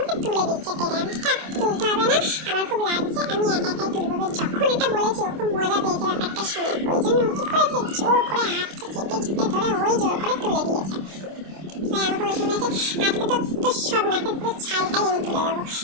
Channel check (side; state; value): left; late; 26 ms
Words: তুলে দিচ্ছে টেনে। আমি থাক, তুলতে হবে না, আমার খুব লাগছে, আমি একা একাই তুলবো। যখন এটা বলেছি ও খুব মজা পেয়েছে ব্যাপারটা শুনে, ওই জন্য ও কি করেছে, জোর করে হাতটা চেপে চেপে ধরে ওই জোর করে তুলে দিয়েছে। আমাকে বলেছে আজকে তো সব নাকের পুরো ছালটাই আমি তুলে দেবো।